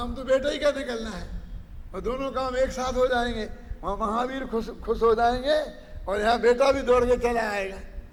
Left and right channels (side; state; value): both; identical; correlation 1.00